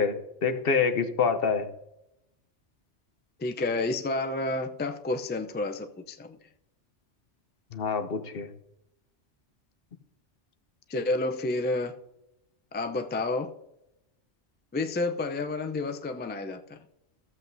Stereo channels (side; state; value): right; quieter; 3.5 dB